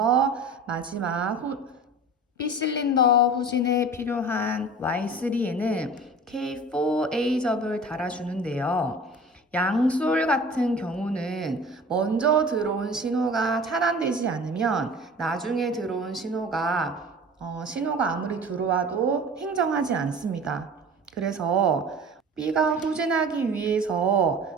마지막 B 실린더 후진에 필요한 Y3에는 K4A 접을 달아주는데요. 양솔 같은 경우는 먼저 들어온 신호가 차단되지 않으면 나중에 들어온 신호가 아무리 들어와도 행정하지 않습니다. 그래서 B가 후진하기 위해서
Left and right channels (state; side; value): normal; both; correlation 0.40